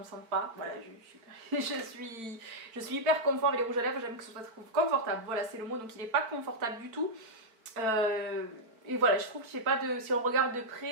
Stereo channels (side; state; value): left; late; 4.5 ms